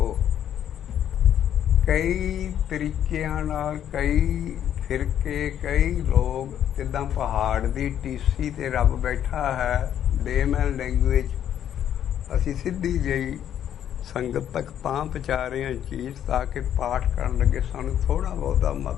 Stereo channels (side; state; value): right; quieter; 10.1 dB